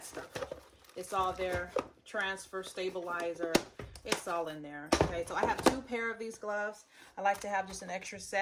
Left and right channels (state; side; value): identical; both; correlation 1.00